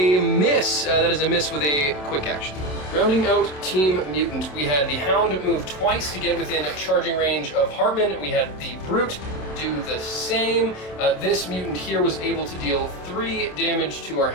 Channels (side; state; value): right; late; 27 ms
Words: miss. That is a miss with a quick action. Rounding out Team Mutant, we had the Hound move twice to get within charging range of Hartman. We had the Brute do the same. This mutant here was able to deal 3 damage to our